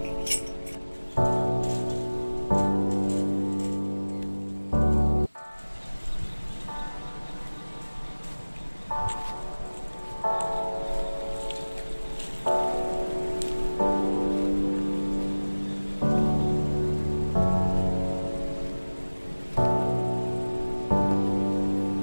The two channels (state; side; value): inverted; both; correlation -1.00